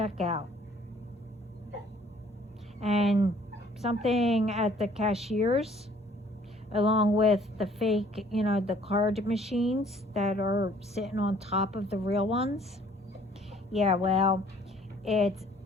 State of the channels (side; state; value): both; normal; correlation 0.58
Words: And something at the cashiers, along with the fake, the card machines that are sitting on top of the real ones. Yeah, well, it